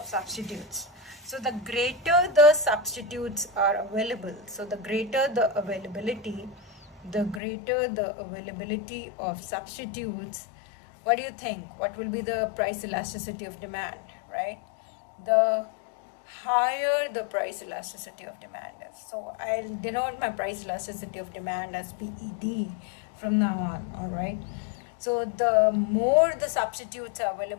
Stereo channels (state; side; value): drops out; right; at 7.4 s